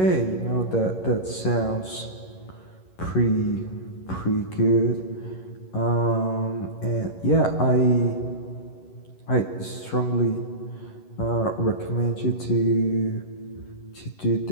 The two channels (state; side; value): late; right; 11 ms